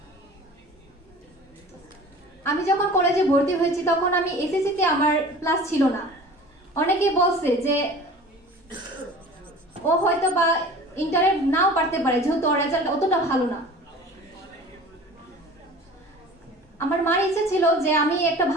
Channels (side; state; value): both; normal; correlation 0.41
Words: আমি যখন কলেজে ভর্তি হয়েছি তখন আমি এসএসসিতে আমার প্লাস ছিল না। অনেকে বলছে যে ও হয়তো বা ইন্টারে নাও পারতে পারে, যেহেতু ওর রেজাল্ট অতটা ভালো না। আমার মার ইচ্ছে ছিল যে আমি একটা